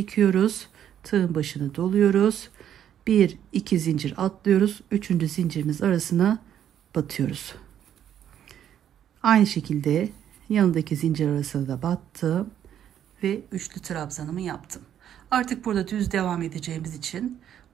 Tığın başını doluyoruz. 1 2 zincir atlıyoruz. 3. zincirimiz arasına batıyoruz. Aynı şekilde yanındaki zincir arasına da battım ve üçlü trabzanımı yaptım. Artık burada düz devam edeceğimiz için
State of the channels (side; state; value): left; quieter; 10.0 dB